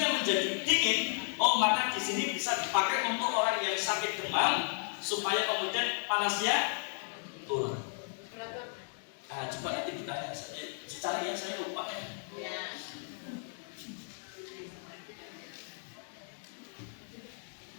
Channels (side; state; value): right; silent; 55 dB below the other